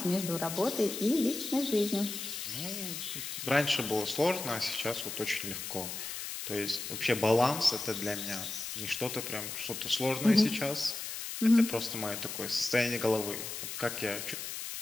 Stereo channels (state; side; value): noise; left; hiss, 6 dB below the sound